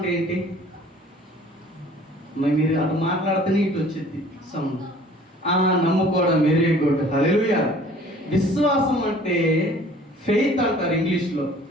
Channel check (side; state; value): both; normal; correlation 0.51